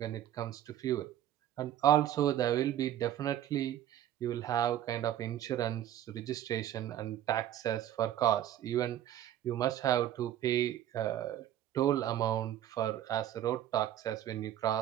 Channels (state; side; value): quieter; left; 11.8 dB